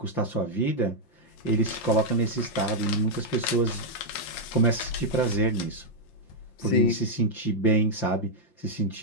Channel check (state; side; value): late; right; 5.8 ms